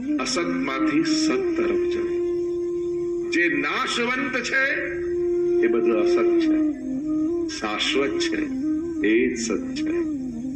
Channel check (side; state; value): both; identical; correlation 1.00